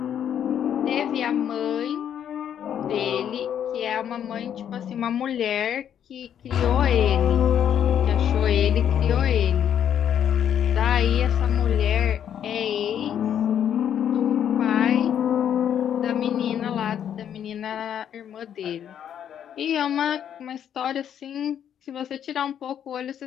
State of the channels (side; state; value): right; quieter; 9.4 dB